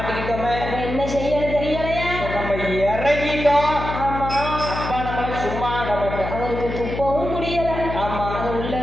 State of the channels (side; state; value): left; noise; hum, 6 dB below the sound